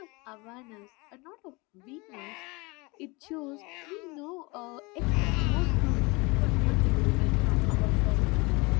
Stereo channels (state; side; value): quieter; right; 26.0 dB